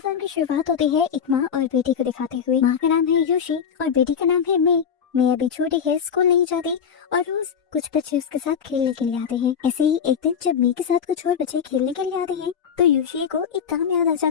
Film की शुरुआत होती है एक माँ और बेटी को दिखाते हुए। माँ का नाम है योशी और बेटी का नाम है मे। मे अभी छोटी है, स्कूल नहीं जाती और रोज कुछ बच्चे उसके साथ खेलने के लिए आते हैं। ऐसे ही एक दिन जब मे के साथ कुछ और बच्चे खेलने के लिए आते हैं तो योशी को एक काम याद आ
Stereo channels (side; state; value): right; quieter; 7.4 dB